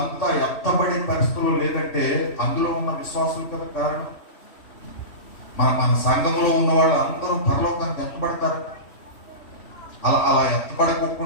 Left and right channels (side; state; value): right; late; 3.1 ms